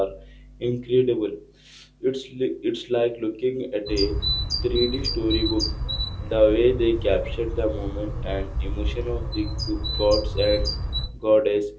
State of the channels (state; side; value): identical; both; correlation 1.00